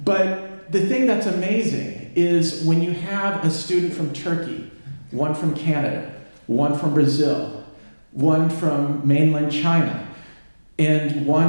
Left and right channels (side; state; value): both; inverted; correlation -1.00